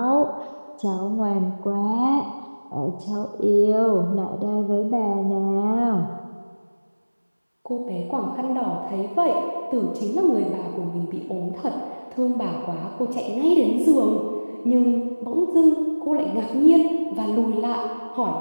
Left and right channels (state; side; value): inverted; both; correlation -1.00